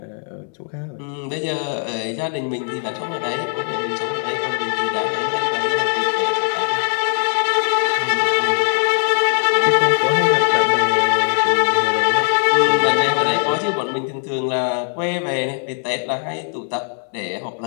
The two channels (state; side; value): silent; right; 63 dB below the other